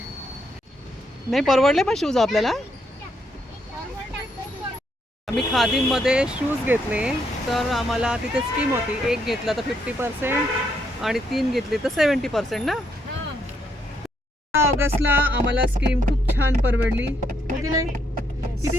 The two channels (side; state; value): both; normal; correlation 0.75